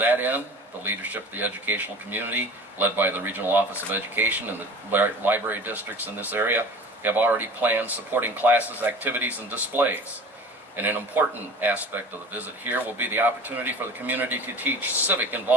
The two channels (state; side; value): normal; both; correlation 0.40